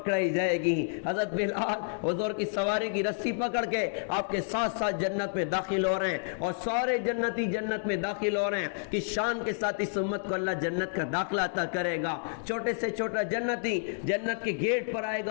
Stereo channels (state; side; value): silent; right; digital silence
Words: جائے گی. حضرت بلال حضور کی سواری کی رسی پکڑ کے آپ کے ساتھ ساتھ جنت میں داخل ہو رہے ہیں, اور سارے جنتی جنت میں داخل ہو رہے ہیں. کس شان کے ساتھ اس امت کو اللہ جنت کا داخلہ عطا کرے گا. چھوٹے سے چھوٹا جنتی جنت کے گیٹ پر آئے